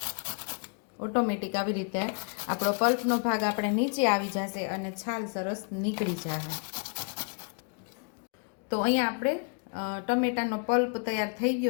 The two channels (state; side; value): quieter; right; 39.5 dB